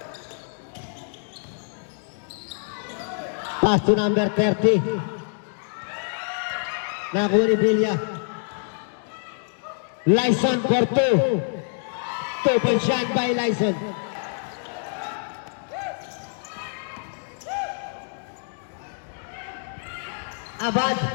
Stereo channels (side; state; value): right; silent; digital silence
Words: Pass to number 30. Nakuha ni Villa. Lyson for 2. 2 points shot by Lyson. Abad,